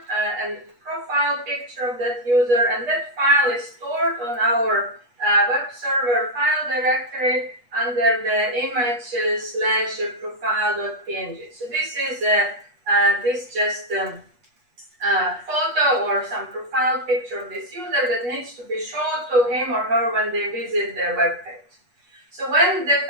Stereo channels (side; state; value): left; late; 8.3 ms